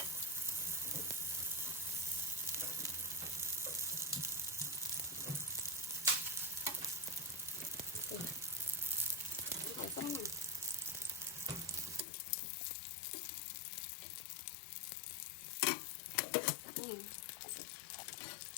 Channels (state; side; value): drops out; right; at 12.1 s